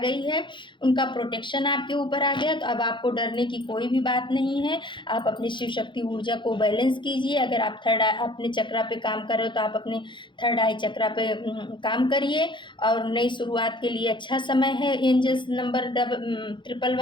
है, उनका प्रोटेक्शन आपके ऊपर आ गया। तो अब आपको डरने की कोई भी बात नहीं है। आप अपनी शिव शक्ति ऊर्जा को बैलेंस कीजिए। अगर आप थर्ड आई अपने चक्रा पे काम कर रहे हो तो आप अपने थर्ड आई चक्रा पे काम करिए। और नई शुरुआत के लिए अच्छा समय है। एंजल्स नंबर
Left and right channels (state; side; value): late; right; 0.23 ms